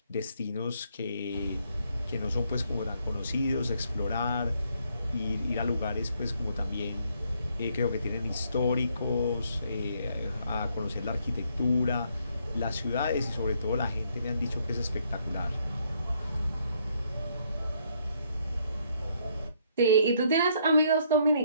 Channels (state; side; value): inverted; both; correlation -0.70